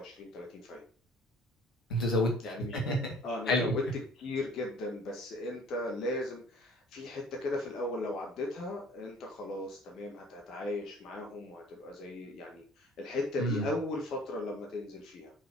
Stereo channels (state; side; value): normal; both; correlation 0.51